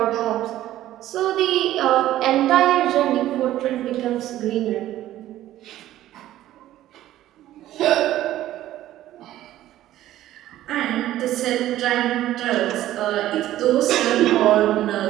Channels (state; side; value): quieter; left; 13.8 dB